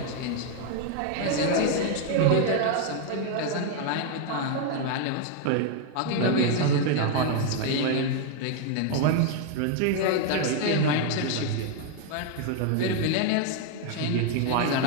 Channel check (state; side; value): different; both; correlation 0.00